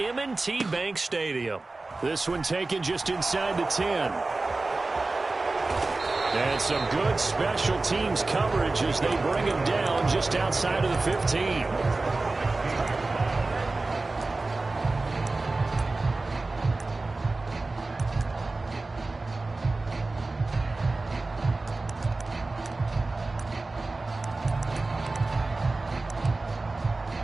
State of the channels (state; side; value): quieter; left; 3.3 dB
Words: Bank Stadium. This one taken just inside the 10. And some good special teams coverage as they bring him down just outside of the 15.